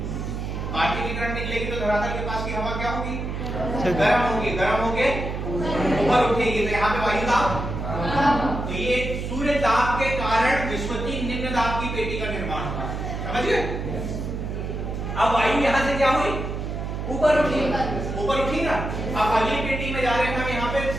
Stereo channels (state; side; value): noise; right; hum, 4 dB below the sound